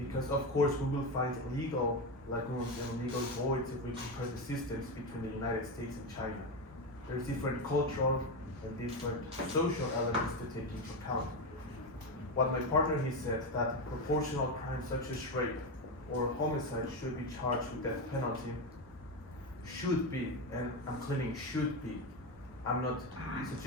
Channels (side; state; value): both; normal; correlation 0.14